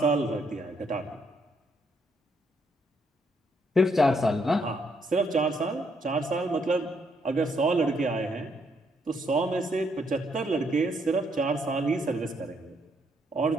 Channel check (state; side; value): normal; both; correlation 0.73